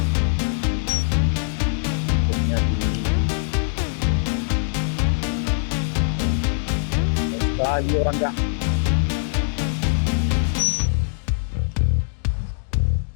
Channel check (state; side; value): silent; right; digital silence